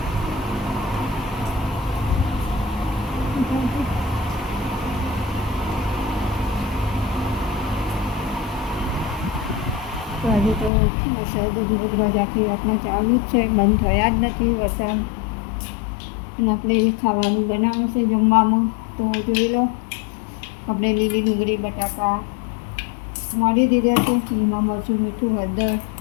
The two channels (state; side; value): drops out; right; at 10.7 s